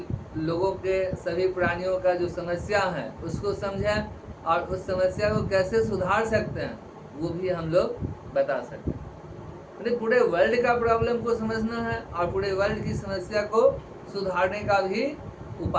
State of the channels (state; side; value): identical; both; correlation 1.00